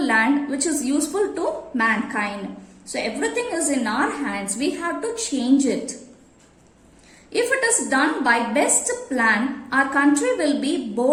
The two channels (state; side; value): identical; both; correlation 1.00